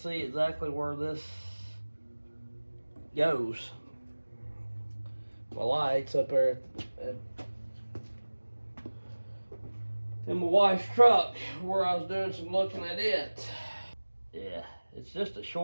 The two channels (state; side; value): inverted; both; correlation -1.00